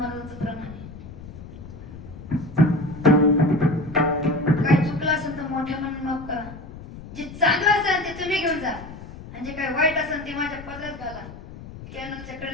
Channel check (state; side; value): noise; left; rumble, 14 dB below the sound